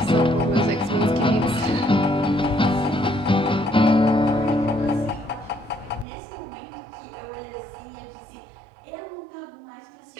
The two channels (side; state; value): left; drops out; at 6.1 s